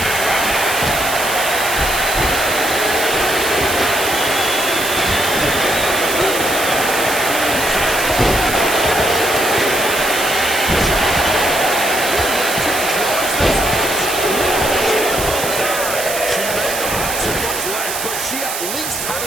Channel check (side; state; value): right; noise; hiss, 5 dB below the sound